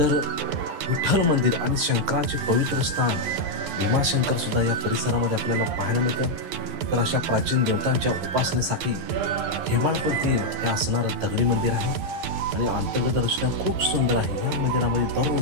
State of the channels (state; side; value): late; left; 11 ms